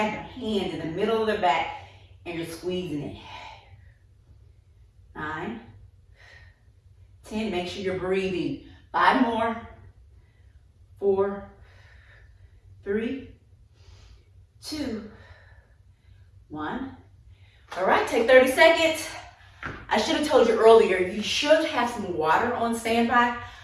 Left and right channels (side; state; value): both; identical; correlation 1.00